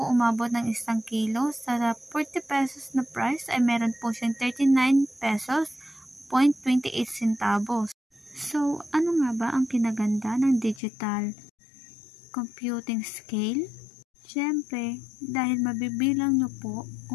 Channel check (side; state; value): right; drops out; at 10.8 s